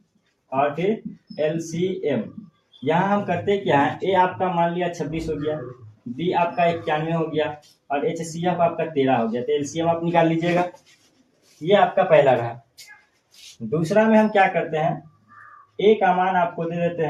और फिर LCM। यहाँ हम करते क्या है, A आपका मान लिया 26 हो गया, B आपका 91 हो गया और HCF आपका 13 हो गया। तो LCM आप निकाल लीजिएगा। ये आपका पहला रहा। दूसरा में हम क्या करते हैं, A का मान आपको दे देते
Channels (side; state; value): both; identical; correlation 1.00